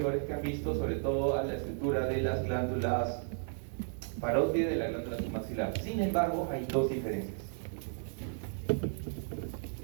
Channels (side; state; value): left; silent; 55 dB below the other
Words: que han visto, sobre todo a la estructura de las glándulas parótidas de la glándula submaxilar. Sin embargo, hay dos diferencias.